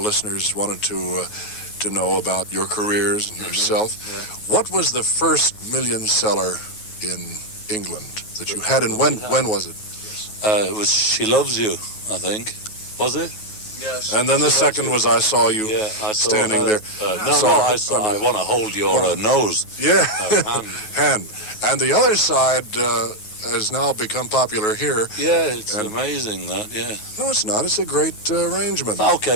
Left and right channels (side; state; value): right; late; 9.3 ms